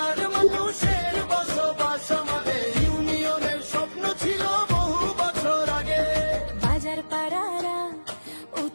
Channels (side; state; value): both; inverted; correlation -1.00